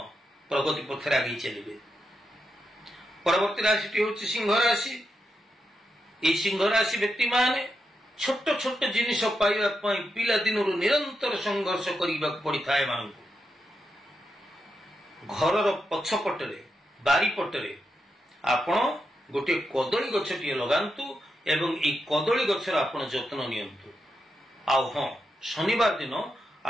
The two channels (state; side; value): normal; both; correlation 0.85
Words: ପ୍ରଗତି ପଥରେ ଆଗେଇ ଚାଲିବେ। ପରବର୍ତ୍ତୀ ରାଶିଟି ହେଉଛି ସିଂହ ରାଶି। এই ସିଂହ ରାଶି ବ୍ୟକ୍ତିମାନେ ଛୋଟ ଛୋଟ ଜିନିଷ ପାଇବା ପାଇଁ ପିଲାଦିନରୁ ନିରନ୍ତର ସଂଘର୍ଷ କରିବାକୁ ପଡ଼ିଥାଏ ଏମାନଙ୍କୁ। ଘରର ପଛପଟରେ, ବାରିପଟରେ ଆପଣ ଗୋଟିଏ କଦଳୀ ଗଛଟିଏ ଲଗାନ୍ତୁ ଏବଂ ଏହି କଦଳୀ ଗଛର ଆପଣ ଯତ୍ନ ନିଅନ୍ତୁ। ଆଉ ହଁ, ଶନିବାର ଦିନ